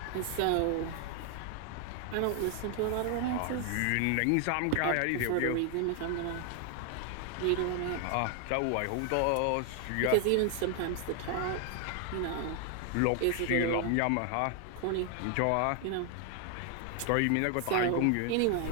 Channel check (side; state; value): both; different; correlation 0.00